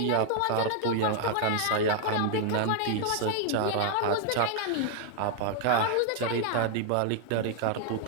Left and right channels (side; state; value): both; different; correlation 0.00